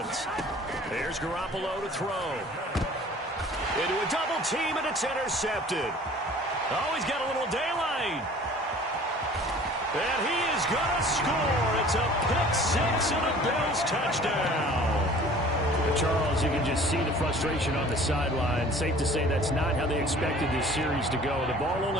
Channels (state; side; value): normal; both; correlation 0.48